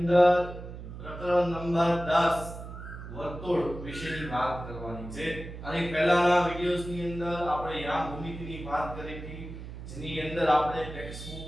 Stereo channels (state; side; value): noise; right; hum, 11 dB below the sound